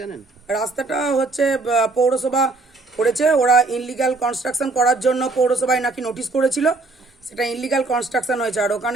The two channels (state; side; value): quieter; left; 3.5 dB